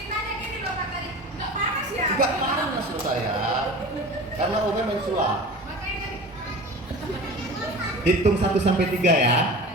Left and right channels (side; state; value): both; normal; correlation 0.36